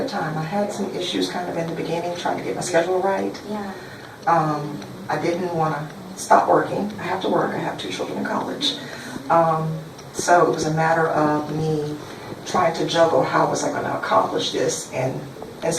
time. I had some issues kind of in the beginning, trying to get my schedule right. Yeah. I didn't want to stop working. I have to work. I have 2 children in college. So it was a matter of me trying to juggle how was I going to accomplish this and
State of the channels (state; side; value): identical; both; correlation 1.00